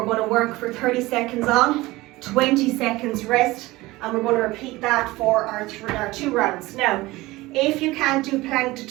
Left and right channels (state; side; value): quieter; left; 19.8 dB